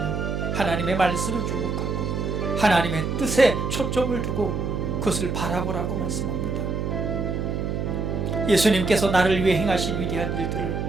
하나님의 말씀을 주목하고 하나님의 뜻에 초점을 두고 그것을 바라보라고 말씀합니다. 예수님께서 나를 위해 행하신 위대한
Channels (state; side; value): noise; right; hum, 2 dB below the sound